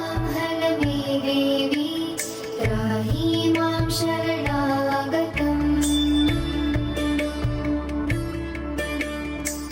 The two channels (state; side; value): identical; both; correlation 1.00